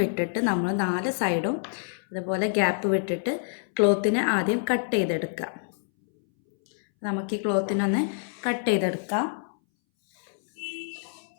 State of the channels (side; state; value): right; silent; 60 dB below the other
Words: വിട്ടിട്ട് നമ്മൾ 4 സൈഡും ഇതുപോലെ ഗ്യാപ്പ് വിട്ടിട്ട് ക്ലോത്തിനെ ആദ്യം കട്ട് ചെയ്തെടുക്കുക. നമുക്ക് ഈ ക്ലോത്തിനൊന്ന് കട്ട് ചെയ്തെടുക്കാം.